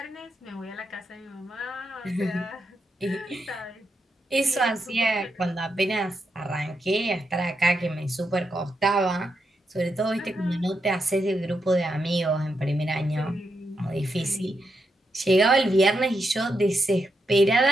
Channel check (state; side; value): normal; both; correlation 0.83